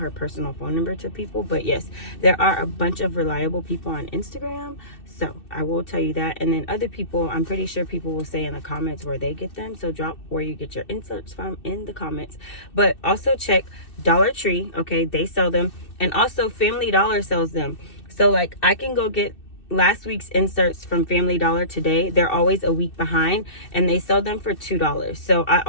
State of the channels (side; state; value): right; late; 2.6 ms